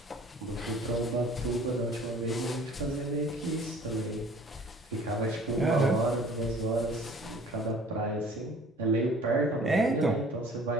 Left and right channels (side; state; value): both; normal; correlation 0.51